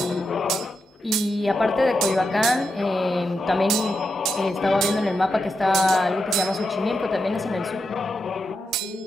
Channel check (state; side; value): normal; both; correlation 0.86